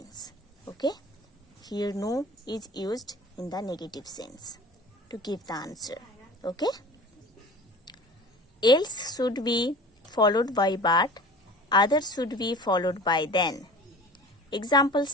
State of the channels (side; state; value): both; normal; correlation 0.40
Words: Okay? Here no is used in the negative sense to give the answer. Okay? Else should be followed by but, others should be followed by then.